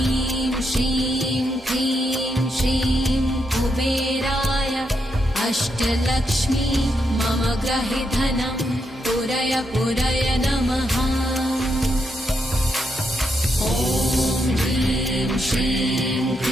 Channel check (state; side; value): normal; both; correlation 0.81